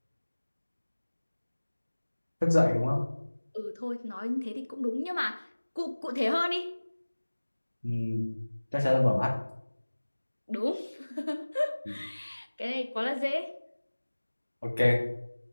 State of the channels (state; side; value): inverted; both; correlation -1.00